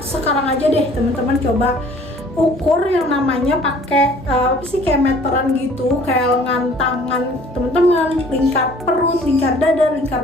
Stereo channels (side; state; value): both; normal; correlation 0.53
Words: sekarang aja deh teman-teman coba ukur yang namanya pakai kayak meteran gitu, kayak lengan tangan teman-teman, lingkar perut, lingkar dada, lingkar